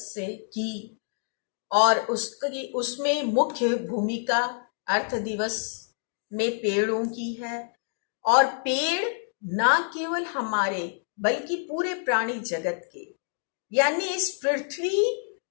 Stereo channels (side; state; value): right; silent; 60 dB below the other